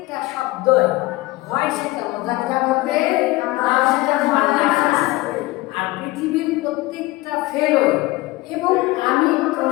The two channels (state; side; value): quieter; right; 20.0 dB